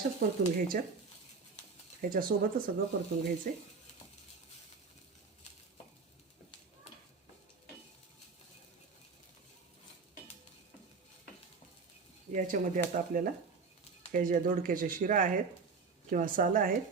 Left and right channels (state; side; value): quieter; left; 4.8 dB